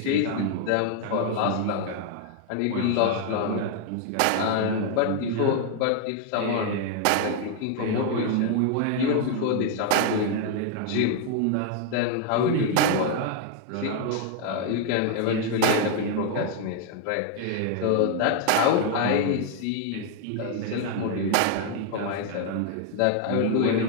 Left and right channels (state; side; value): different; both; correlation 0.00